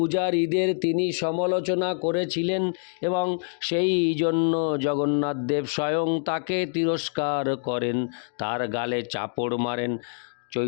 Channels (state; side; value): silent; right; 61 dB below the other